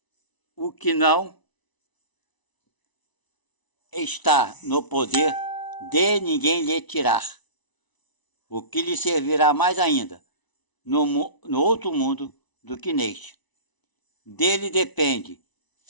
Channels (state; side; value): late; right; 1.0 ms